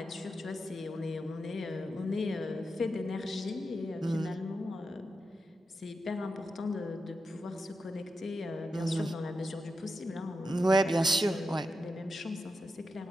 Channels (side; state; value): both; normal; correlation 0.88